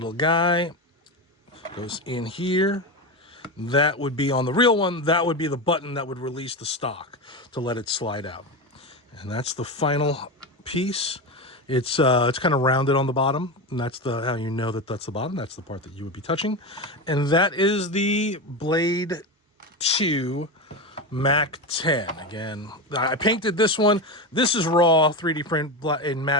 guy goes in here. That would be on the real one. That would be the button that would release the stock to let it slide out. And that's the final piece. It's kind of rounded on the bottom, and that's how you know that that's the bottom. That's the part that you would be touching. And that is the Blade 2 Mac 10. Again, I painted this one. This is raw 3D print in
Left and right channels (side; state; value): both; normal; correlation 0.18